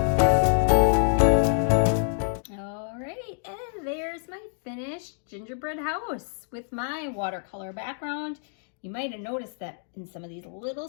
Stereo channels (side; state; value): right; silent; digital silence